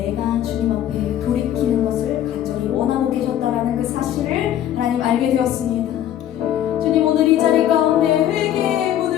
주님 앞에 돌이키는 것을 간절히 원하고 계셨다라는 그 사실을 하나님 알게 되었습니다.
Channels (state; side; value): quieter; right; 11.4 dB